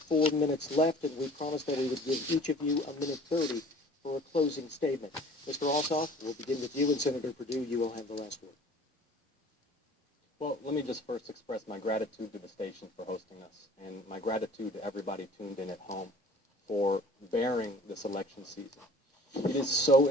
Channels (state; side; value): normal; both; correlation 0.49